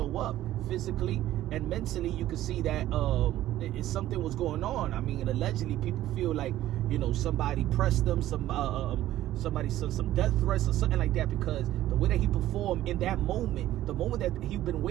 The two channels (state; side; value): quieter; left; 14.0 dB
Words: up. Physically and mentally, you could see that something was going on. I mean, allegedly, people feel like, you know, somebody pressed them, somebody sent some death threats or something like that, because the way that he performed in that moment, the moment that he'd been